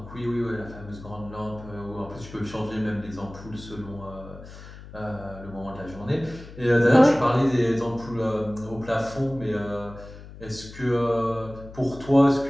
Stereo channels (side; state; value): left; noise; hum, 16 dB below the sound